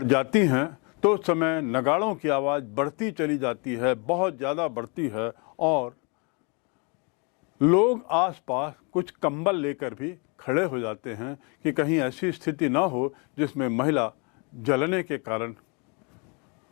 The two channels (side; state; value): right; quieter; 33.5 dB